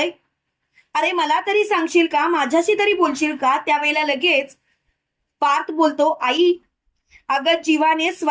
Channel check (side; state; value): both; identical; correlation 1.00